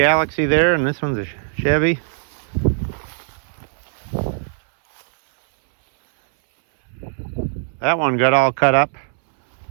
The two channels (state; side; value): silent; left; 62 dB below the other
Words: there, and this one's a Chevy. That one got all cut up.